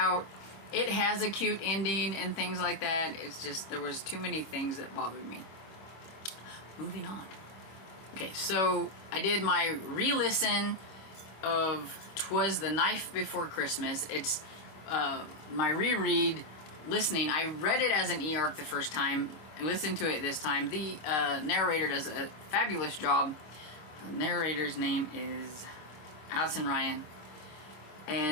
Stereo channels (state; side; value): late; right; 26 ms